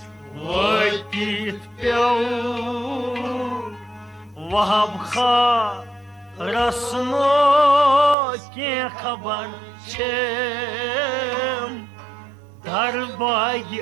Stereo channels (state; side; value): drops out; left; at 8.2 s